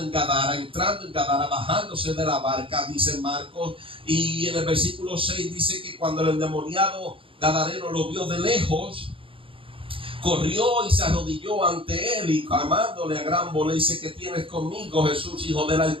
Gadara, entrando en Gadara, bajándose de la barca, dice Marcos. Y en el versículo 6 dice que cuando el endemoniado gadareno lo vio de lejos, corrió y se arrodilló ante él y clamándole a gran voz, le dice, ¿qué tienes conmigo, Jesús, Hijo del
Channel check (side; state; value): left; late; 0.26 ms